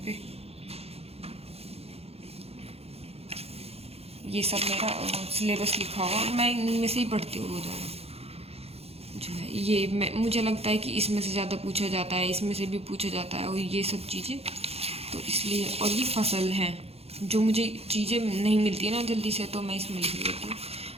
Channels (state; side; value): late; left; 0.29 ms